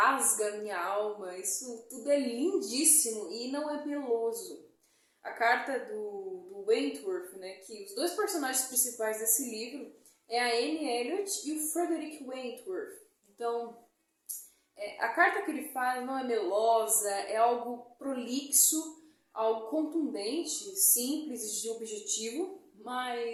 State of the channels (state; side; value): identical; both; correlation 1.00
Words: minha alma. Isso tudo é lindíssimo e não é meloso. A carta do Wentworth, né, que os dois personagens principais desse livro é a Anne Elliot e o Frederick Wentworth. Então, a carta que ele faz não é melosa, é algo prolixo, algo contundente, simples e de objetivo,